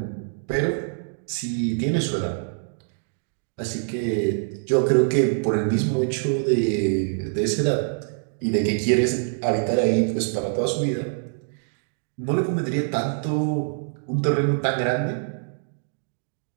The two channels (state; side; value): silent; left; digital silence